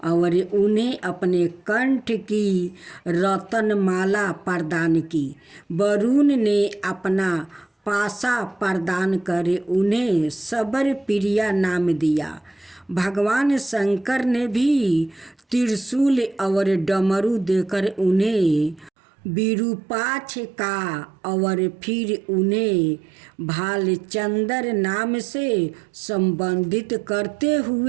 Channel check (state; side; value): drops out; left; at 18.9 s